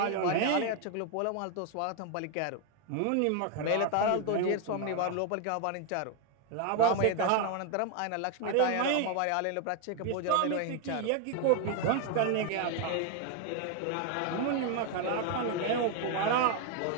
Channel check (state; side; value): different; both; correlation 0.01